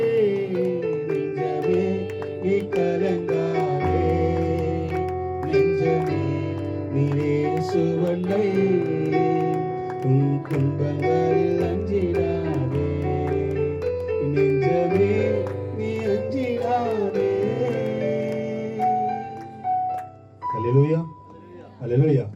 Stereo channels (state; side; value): identical; both; correlation 1.00